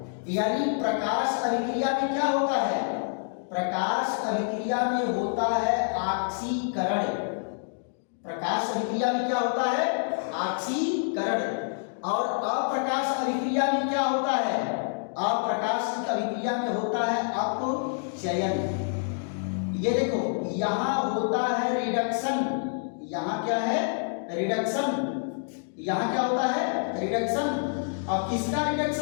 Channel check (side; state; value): right; silent; digital silence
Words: यानी प्रकाश अभिक्रिया में क्या होता है, प्रकाश अभिक्रिया में होता है ऑक्सीकरण, प्रकाश अभिक्रिया में क्या होता है, ऑक्सीकरण। और अप्रकाश अभिक्रिया में क्या होता है, अप्रकाश अभिक्रिया में होता है अपचयन। ये देखो, यहां होता है रिडक्शन, यहां क्या है, रिडक्शन, यहां क्या होता है, रिडक्शन। और किसका